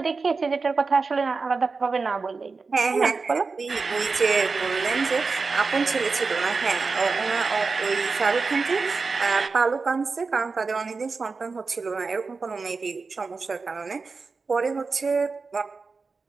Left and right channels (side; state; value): left; quieter; 4.4 dB